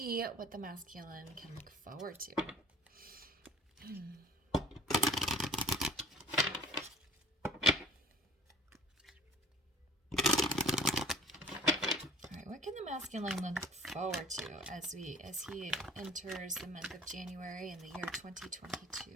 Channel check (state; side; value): normal; both; correlation 0.46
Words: what the masculine can look forward to. What can the masculine look forward to as he enters the month of January in the year 2022?